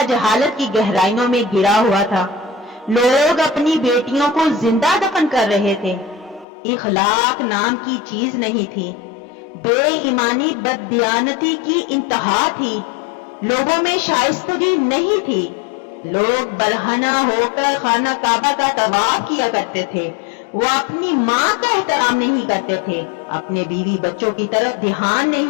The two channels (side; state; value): right; drops out; at 6.5 s